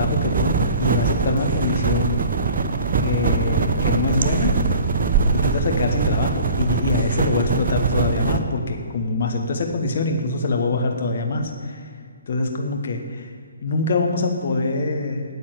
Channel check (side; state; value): both; inverted; correlation -0.47